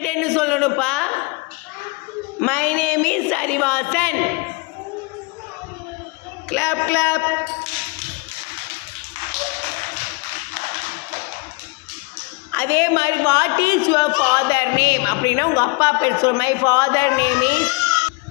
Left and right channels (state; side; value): quieter; right; 27.8 dB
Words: என்ன சொல்லணும்ப்பா? My name is Arivasan. Clap clap. அதே மாதிரி what is your father name அப்படின்னா உங்கள் அப்பா பேர் சொல்லு. My father name is.